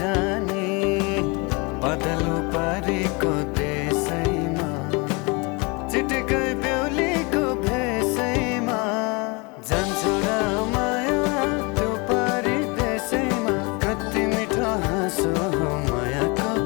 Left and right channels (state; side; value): quieter; right; 28.9 dB